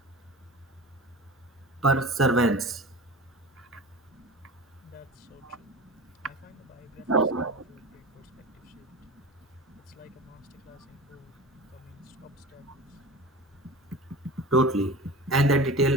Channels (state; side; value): normal; both; correlation 0.34